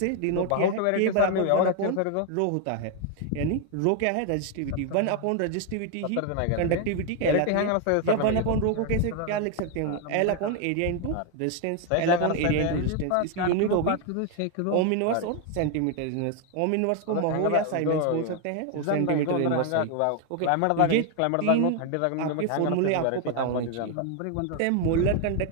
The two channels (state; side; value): different; both; correlation 0.01